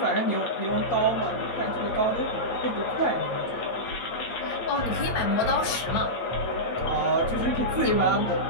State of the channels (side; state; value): right; late; 8.7 ms